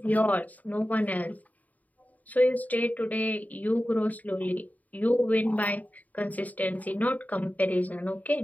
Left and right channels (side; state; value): right; late; 0.074 ms